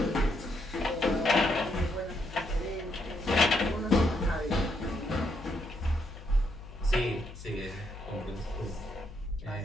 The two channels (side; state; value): left; noise; hum, 14 dB below the sound